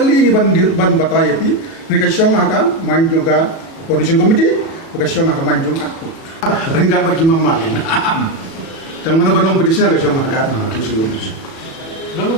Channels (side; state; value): right; late; 36 ms